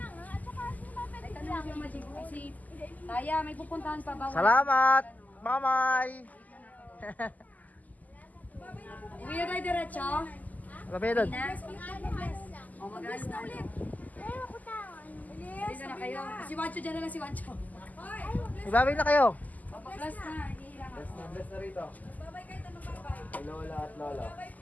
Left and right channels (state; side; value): late; right; 0.079 ms